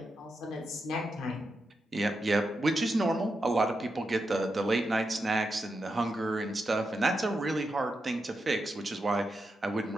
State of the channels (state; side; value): normal; both; correlation 0.86